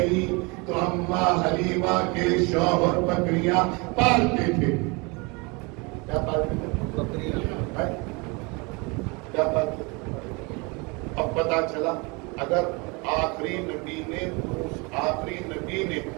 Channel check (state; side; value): quieter; left; 28.7 dB